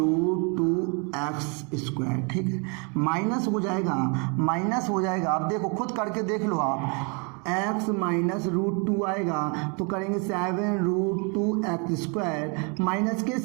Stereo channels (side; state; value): left; quieter; 34.5 dB